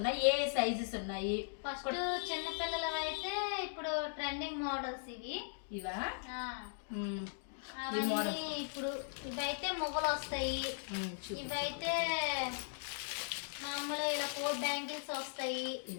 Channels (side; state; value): right; silent; digital silence